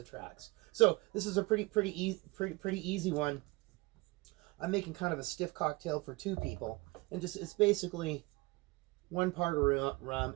tracks. So this is a pretty easy one. I'm making kind of a stiff cocktail for 2 people, and it's basically 1 part of rum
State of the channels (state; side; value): quieter; left; 23.4 dB